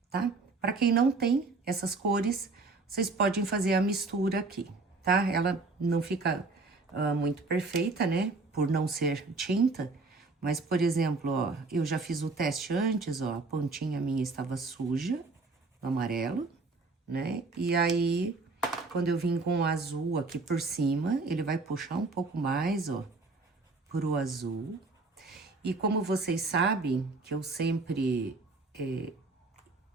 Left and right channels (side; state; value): left; quieter; 3.7 dB